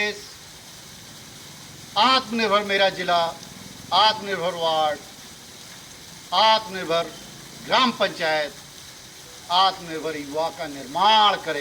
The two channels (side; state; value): both; identical; correlation 1.00